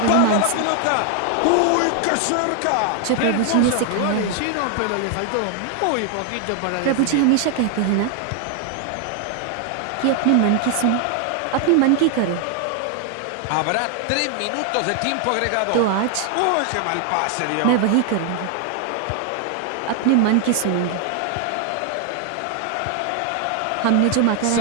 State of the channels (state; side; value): different; both; correlation 0.00